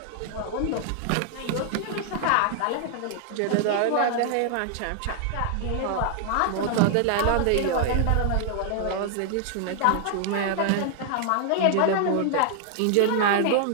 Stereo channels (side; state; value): both; different; correlation 0.00